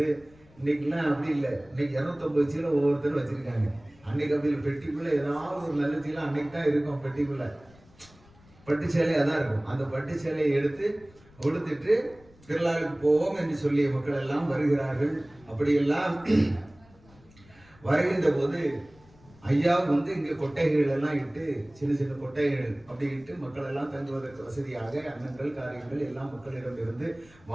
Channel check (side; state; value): left; noise; rumble, 26 dB below the sound